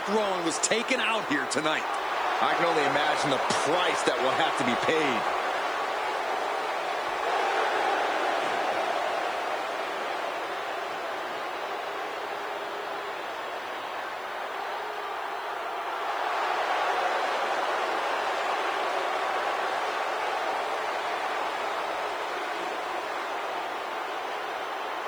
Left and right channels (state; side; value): noise; left; hiss, 26 dB below the sound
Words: Rowan was taken out here tonight. I can only imagine the price that will have to be paid.